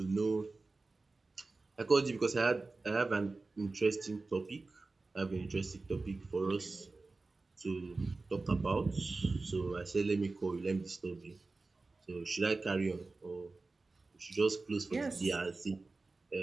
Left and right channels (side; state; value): left; quieter; 3.6 dB